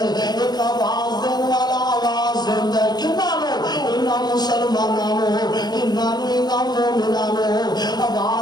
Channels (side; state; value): right; late; 0.20 ms